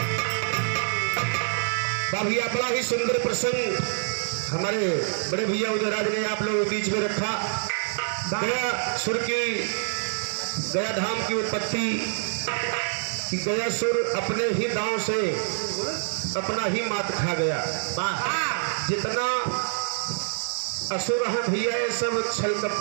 भैया बड़ा ही सुंदर प्रसंग हमारे बड़े भैया उदयराज ने आप लोगों के बीच में रखा। गया सुर की गया धाम की उत्पत्ति कि गया सुर अपने ही दांव से अपना ही मात खा गया। जितना असुर है भैया ये सब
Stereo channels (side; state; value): left; silent; digital silence